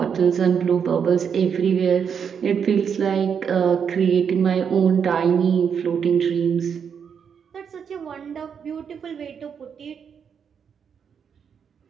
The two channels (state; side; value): quieter; left; 7.2 dB